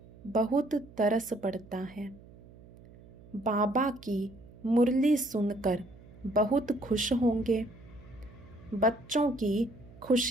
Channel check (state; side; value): noise; right; hum, 21 dB below the sound